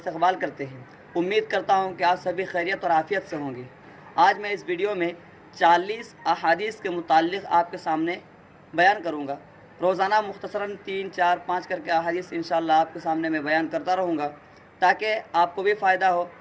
کرتے ہیں۔ امید کرتا ہوں کہ آپ سبھی خیریت اور عافیت سے ہوں گے۔ آج میں اس ویڈیو میں 40 احادیث کے متعلق آپ کے سامنے بیان کروں گا۔ روزانہ مختصراً 3، 4، 5 کر کے احادیث انشاءاللہ آپ کے سامنے میں بیان کرتا رہوں گا، تاکہ آپ کو بھی فائدہ ہو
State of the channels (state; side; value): identical; both; correlation 1.00